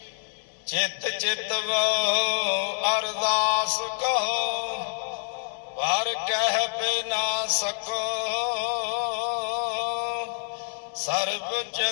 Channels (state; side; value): silent; right; digital silence